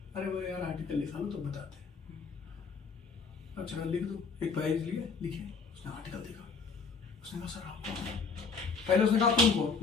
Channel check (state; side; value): quieter; right; 4.9 dB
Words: अरे वो यार आर्टिकल लिखा लो तो बताते। अच्छा लिख दो, एक पेज लिया, लिखे, उसने आर्टिकल देखा, उसने कहा सर आप कौन? पहले उसने कहा तुम कौन,